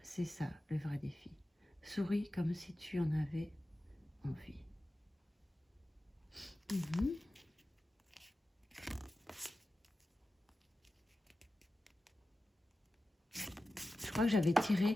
c'est ça, le vrai défi. Souris comme si tu en avais envie. Je crois que j'avais tiré...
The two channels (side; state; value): both; normal; correlation 0.94